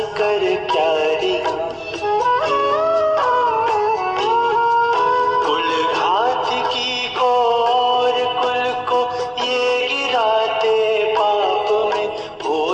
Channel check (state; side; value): identical; both; correlation 1.00